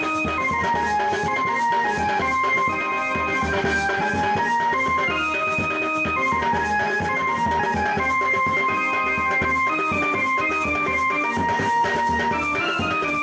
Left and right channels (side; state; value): both; identical; correlation 1.00